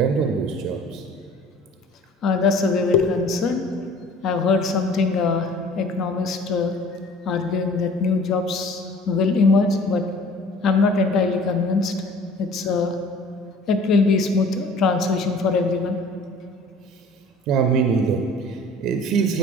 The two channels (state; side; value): normal; both; correlation 0.49